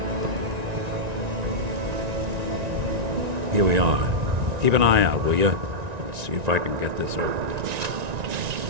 Here we are. Keep an eye out, will you? See if I can get this over.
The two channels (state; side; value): late; left; 1.9 ms